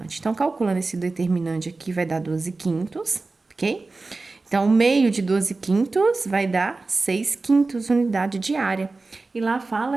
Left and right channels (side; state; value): left; quieter; 3.6 dB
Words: Então, calculando esse determinante aqui, vai dar 12/5, ok? Então, o meio de 12/5 vai dar 6/5 unidade de área. E lá